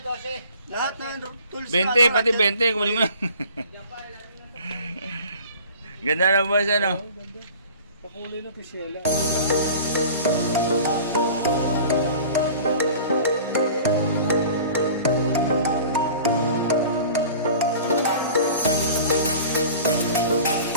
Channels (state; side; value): inverted; both; correlation -0.43